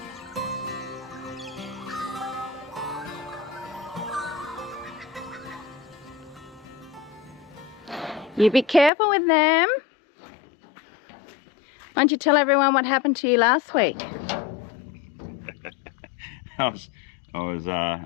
You be careful with them. Why don't you tell everyone what happened to you last week?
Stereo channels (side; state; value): right; drops out; at 8.9 s